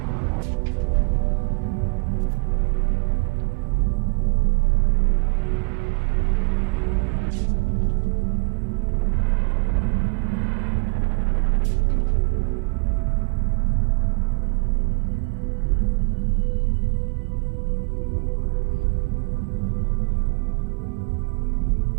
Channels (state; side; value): quieter; left; 33.9 dB